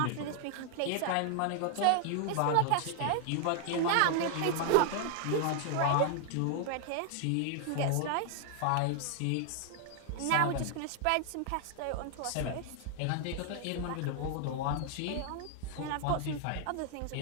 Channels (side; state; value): both; different; correlation 0.00